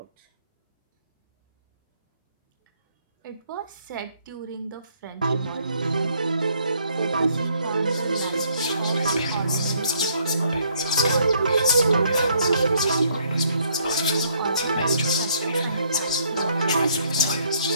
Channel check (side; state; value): both; inverted; correlation -0.67